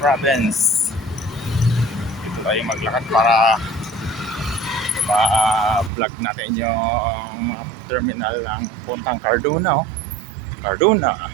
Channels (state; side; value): drops out; left; at 5.9 s